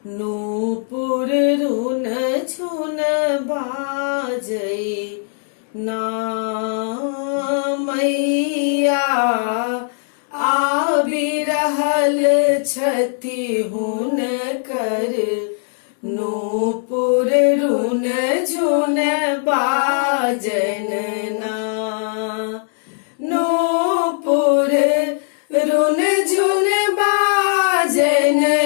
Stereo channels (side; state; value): right; silent; 66 dB below the other